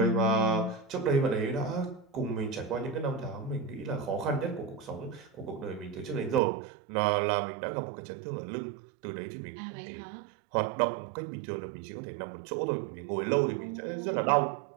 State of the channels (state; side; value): drops out; left; at 6.4 s